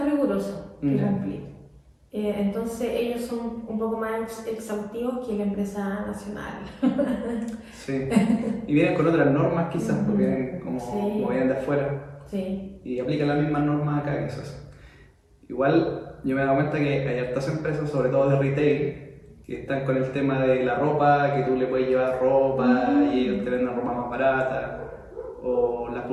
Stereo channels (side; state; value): both; identical; correlation 1.00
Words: rigurosos que cumplir. Entonces ellos son un poco más exhaustivos que la empresa nacional. Sí, y vienen con otras normas quizás, porque vienen como vienen de afuera. Sí. Y aplican las mismas normas acá quizás. Igual yo me he dado cuenta que hay hartas empresas, sobre todo de retail, que están con el tema de la ropa, que tú le puedes llevar ropa y ellos te venden ropa más barata, o las